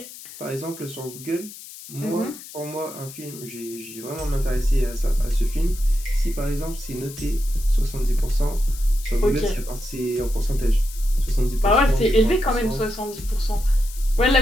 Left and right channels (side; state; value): left; noise; hiss, 15 dB below the sound